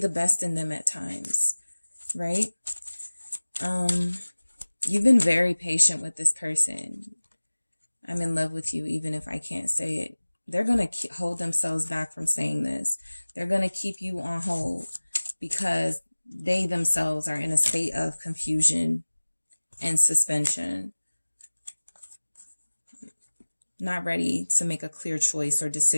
best in them at times, right? You've been very patient with this person. I'm in love with you, even if I can't say it. They're going to hold themselves back from saying this. They're going to keep you on hold because they themselves are in a state of confusion and suspension. Not ready to make a clear choice or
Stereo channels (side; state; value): both; inverted; correlation -1.00